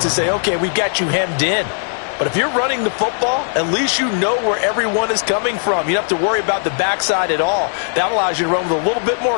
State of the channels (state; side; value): silent; right; digital silence